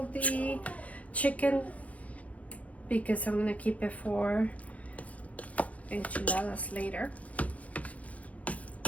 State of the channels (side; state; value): right; late; 0.068 ms